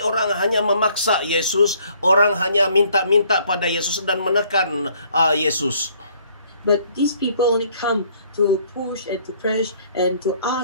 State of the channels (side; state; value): both; inverted; correlation -0.62